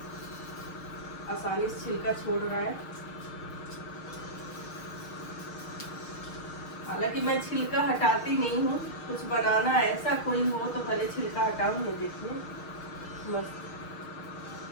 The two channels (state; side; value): late; right; 6.5 ms